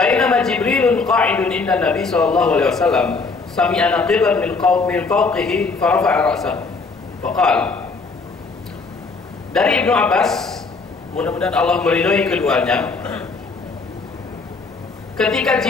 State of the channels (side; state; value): right; quieter; 4.2 dB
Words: Jibrilun qa'idun inda Nabi sallallahu alaihi wasallam sami'a naqiban min fawqihi farafa'a ra'sahu faqala. Dari Ibnu Abbas, mudah-mudahan Allah meridhai keduanya, ketika